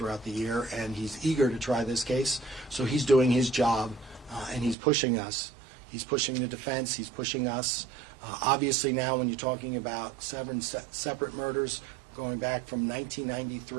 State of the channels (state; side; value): drops out; left; at 4.8 s